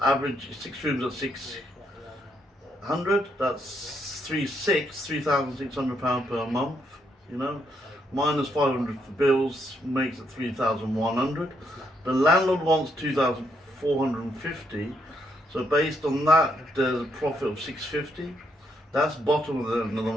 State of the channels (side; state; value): both; normal; correlation 0.75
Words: average 6 rooms at 600, that's £3,600 per month, you know, minus 500 for bills makes it 3,100. The landlord wants 2,450. So based on that, there's a profit of 650. That's bottom of the end of the